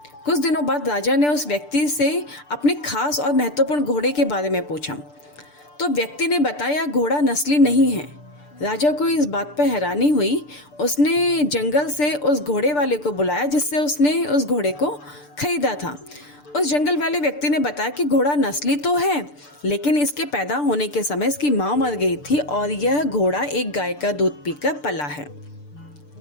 कुछ दिनों बाद राजा ने उस व्यक्ति से अपने खास और महत्वपूर्ण घोड़े के बारे में पूछा तो व्यक्ति ने बताया, घोड़ा नस्ली नहीं है। राजा को इस बात पर हैरानी हुई। उसने जंगल से उस घोड़े वाले को बुलाया जिससे उसने उस घोड़े को खरीदा था। उस जंगल वाले व्यक्ति ने बताया कि घोड़ा नस्ली तो है, लेकिन इसके पैदा होने के समय इसकी माँ मर गई थी और यह घोड़ा एक गाय का दूध पीकर पला है।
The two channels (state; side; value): late; right; 6.8 ms